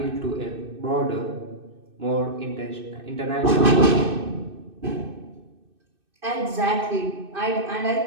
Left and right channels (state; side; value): late; left; 2.6 ms